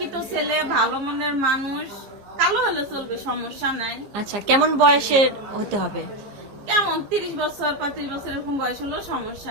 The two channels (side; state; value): left; late; 15 ms